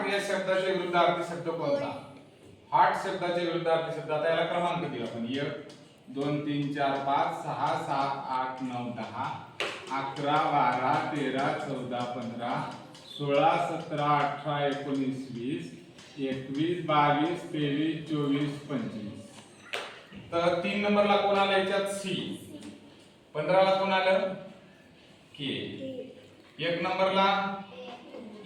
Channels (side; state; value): both; identical; correlation 1.00